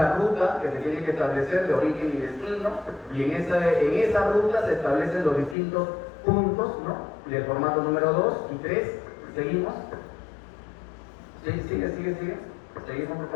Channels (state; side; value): drops out; right; at 5.6 s